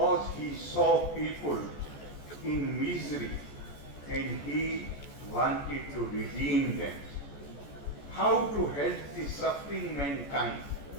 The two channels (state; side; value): late; right; 14 ms